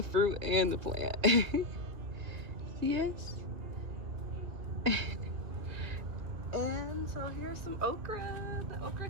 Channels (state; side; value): late; left; 2.7 ms